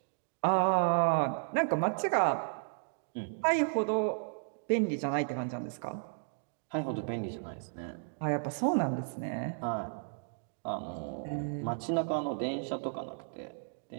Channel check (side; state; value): left; silent; digital silence